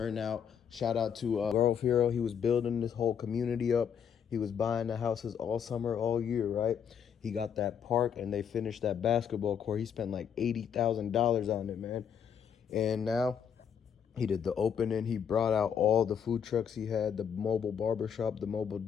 Shout out to Grove Hero. He was building this whole community up. He was buying the houses all summer, all year, right? He got that park and they finished that basketball court. He spent like $80,000 on it, man. And now he did the opening. He brought out all the food trucks he had, the mobile barbershop, the mobile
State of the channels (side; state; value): right; quieter; 7.8 dB